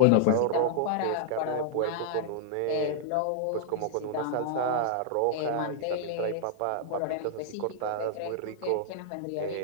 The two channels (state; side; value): different; both; correlation -0.01